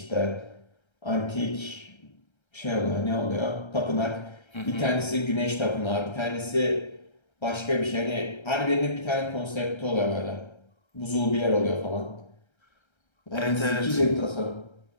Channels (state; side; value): late; right; 1.3 ms